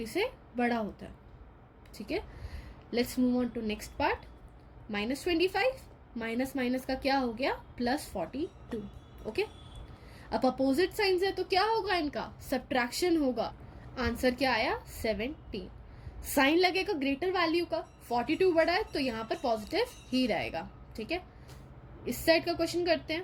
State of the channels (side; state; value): both; identical; correlation 1.00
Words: से बड़ा होता है। ठीक है, let's move on to next part. -25 minus minus का क्या हो गया, +42। ओके, अब अपोजिट साइंस है तो क्या होगा, इनका सब्ट्रैक्शन होगा, आंसर क्या आया 17। साइन लगेगा ग्रेटर वैल्यू का, 42 बड़ा है तो यहाँ पर पॉजिटिव ही रहेगा। ठीक है, इस साइड का क्वेश्चन करते